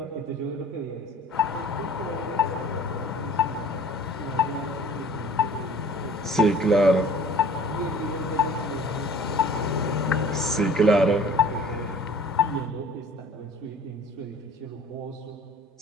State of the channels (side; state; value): both; normal; correlation 0.48